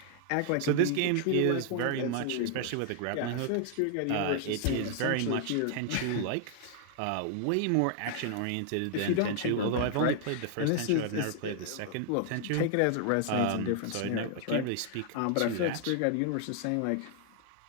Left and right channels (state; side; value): different; both; correlation 0.00